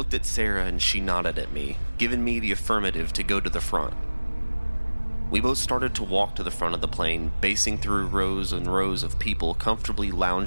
at Sarah and she nodded at me, giving me the affirmative to go to the front. We both started to walk to the front of the plane, basing through rows and rows of people comfortably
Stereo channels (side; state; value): both; inverted; correlation -1.00